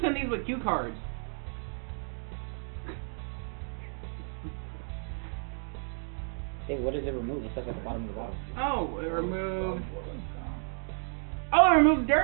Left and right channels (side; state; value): left; silent; digital silence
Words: send these with cue cards. Hey, what does it remove? It says at the bottom of the bottle. Oh, it removes. Oh, it removes